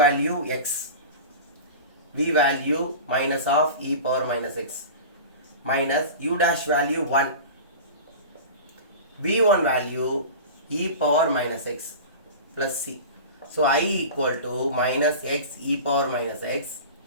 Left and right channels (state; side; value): inverted; both; correlation -0.33